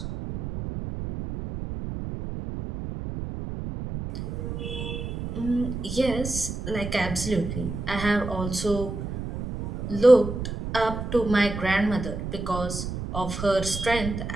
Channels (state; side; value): noise; right; rumble, 6 dB below the sound